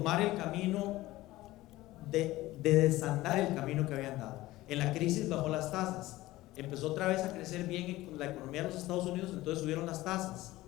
el camino de desandar el camino que habían dado. En la crisis bajó las tasas, empezó otra vez a crecer bien la economía de los Estados Unidos, entonces subieron las tasas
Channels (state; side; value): quieter; right; 17.5 dB